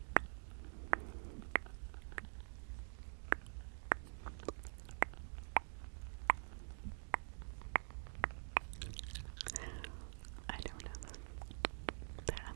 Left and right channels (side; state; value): left; silent; digital silence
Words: I don't know. I